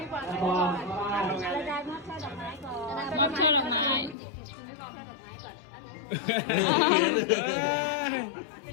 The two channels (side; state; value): right; drops out; at 4.2 s